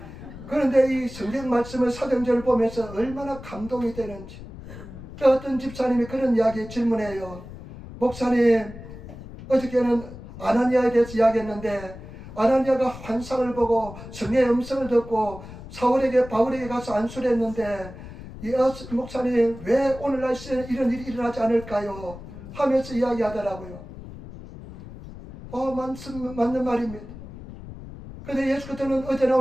그런데 이 성경 말씀을 사도행전을 보면서 얼마나 감동이 되는지. 어떤 집사님이 그런 이야기 질문해요. 목사님, 어저께는 아나니아에 대해서 이야기했는데 아나니아가 환상을 보고 성령의 음성을 듣고 바울에게 가서 안수를 했는데 목사님 왜 오늘날 시대에 이런 일이 일어나지 않을까요? 하면서 이야기하더라고요. 맞는 말입니다. 그런데 예수 그리스도는 어제나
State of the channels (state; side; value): noise; left; rumble, 14 dB below the sound